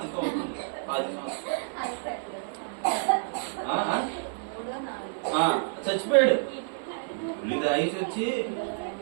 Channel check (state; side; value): silent; left; 56 dB below the other